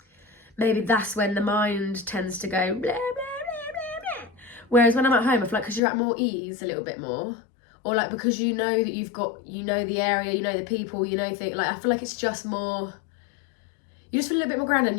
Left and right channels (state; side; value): drops out; right; at 5.8 s